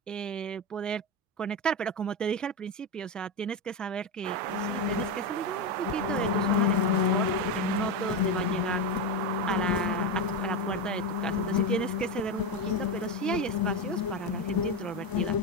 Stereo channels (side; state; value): both; normal; correlation 0.14